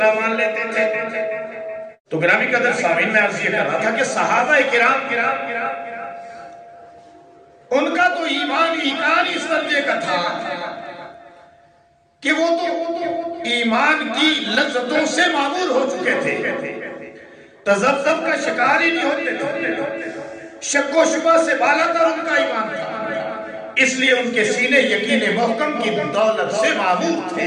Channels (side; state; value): both; identical; correlation 1.00